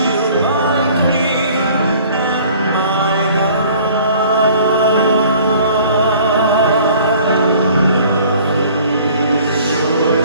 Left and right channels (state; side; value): inverted; both; correlation -0.52